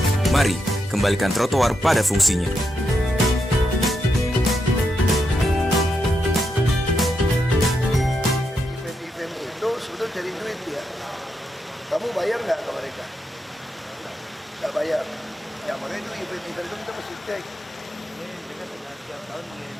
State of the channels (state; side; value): normal; both; correlation 0.83